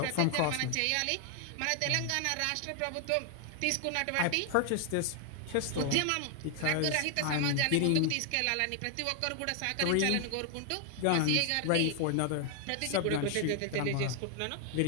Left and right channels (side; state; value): both; different; correlation 0.00